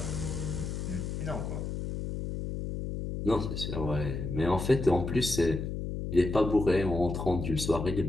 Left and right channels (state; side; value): noise; left; hum, 4 dB below the sound